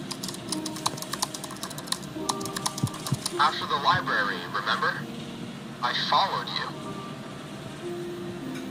After the library, remember? I followed you.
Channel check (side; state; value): both; identical; correlation 1.00